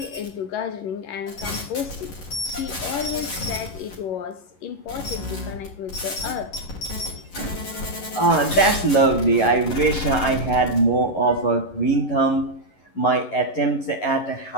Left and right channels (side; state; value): right; late; 11 ms